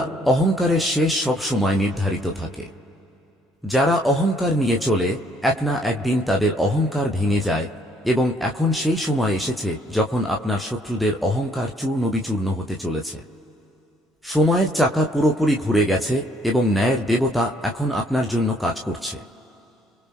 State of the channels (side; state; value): both; normal; correlation 0.65